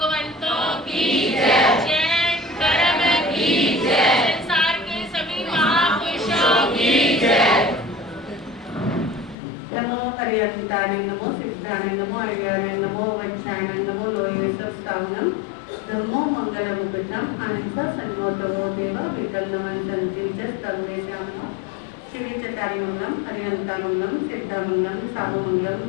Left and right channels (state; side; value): drops out; right; at 9.3 s